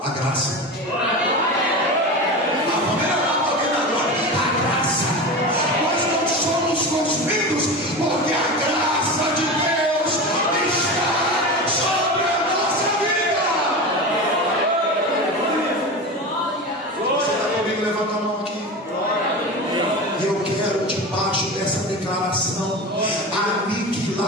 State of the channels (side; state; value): both; normal; correlation 0.26